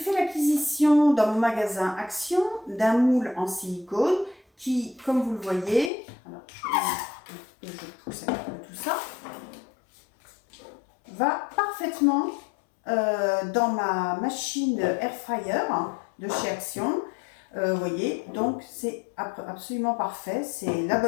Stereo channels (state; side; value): drops out; right; at 5.9 s